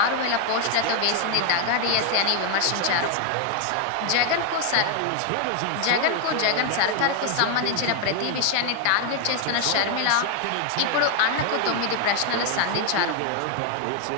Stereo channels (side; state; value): both; different; correlation 0.01